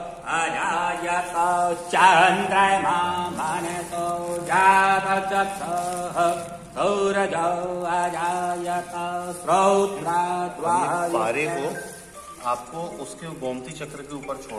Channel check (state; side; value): identical; both; correlation 1.00